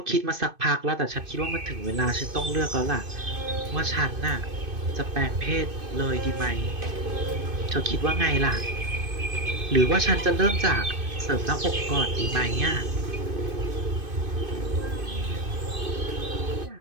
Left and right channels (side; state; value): left; late; 2.5 ms